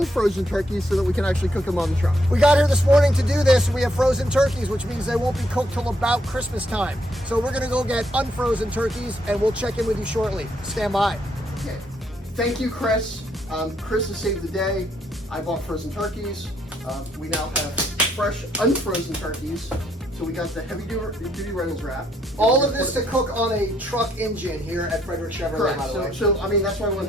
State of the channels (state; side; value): normal; both; correlation 0.73